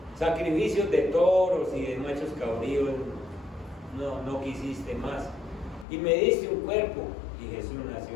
sacrificios de toros y de machos cabríos no quisiste más, y me diste un cuerpo, y Jesús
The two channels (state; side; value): drops out; right; at 5.9 s